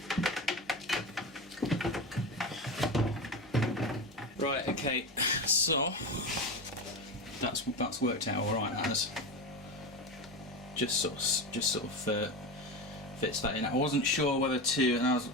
Right, okay, so that's worked out alright, that has. Just sort of fits that in. I wasn't sure whether to, and I was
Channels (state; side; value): normal; both; correlation 0.22